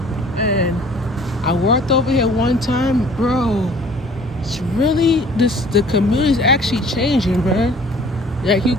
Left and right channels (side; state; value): both; normal; correlation 0.52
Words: and I worked over here one time, bro. It's really the community's actually changing, bro. Like you